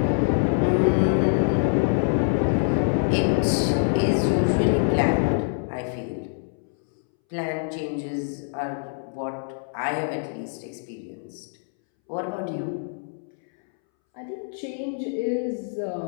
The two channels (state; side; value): silent; right; 62 dB below the other